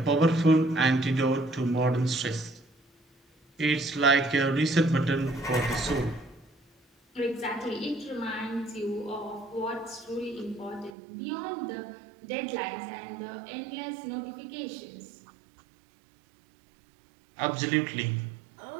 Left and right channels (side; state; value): left; drops out; at 10.9 s